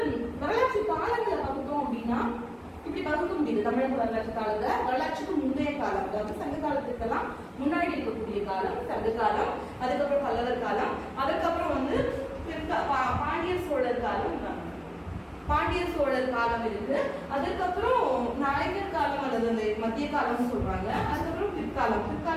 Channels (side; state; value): both; identical; correlation 1.00